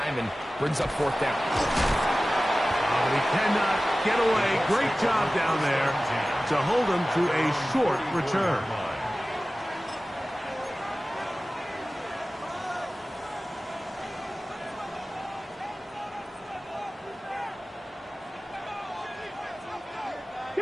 and brings up fourth down. Oh, he cannot get away. Great job down there to hold him to a short return.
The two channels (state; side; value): normal; both; correlation 0.97